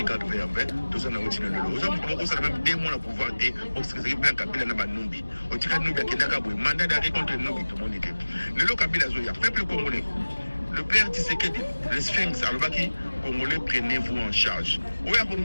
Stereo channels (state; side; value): inverted; both; correlation -1.00